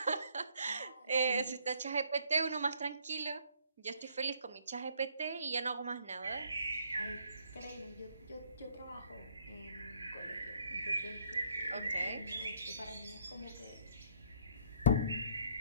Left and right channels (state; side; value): inverted; both; correlation -0.66